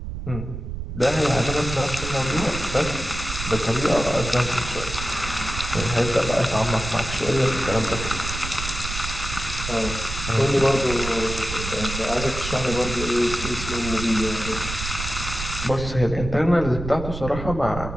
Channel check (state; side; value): noise; right; rumble, 7 dB below the sound